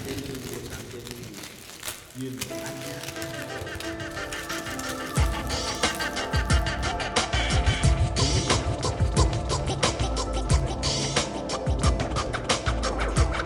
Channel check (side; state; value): both; identical; correlation 1.00